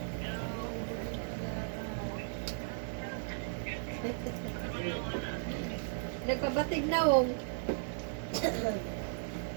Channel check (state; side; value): silent; left; digital silence